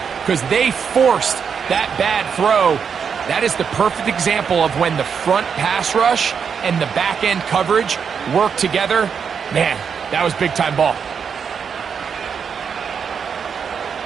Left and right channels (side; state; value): left; quieter; 6.7 dB